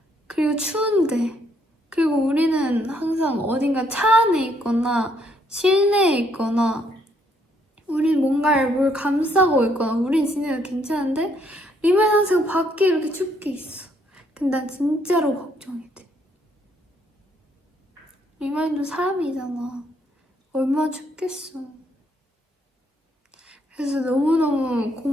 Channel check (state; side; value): normal; both; correlation 0.70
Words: 그리고 추운데. 그리고 우리는 항상 어딘가 차 안에 있거나 실내에 있거나 우린 뭔가를 뭘 감싸고 있거나 우린 진짜 괜찮은데 리마는 항상 밖에 이렇게 춥게 있어. 근데 난 진짜로 걱정이 돼. 리마인도 사람이잖아. 얼마나 춥겠어. 그래서 너무너무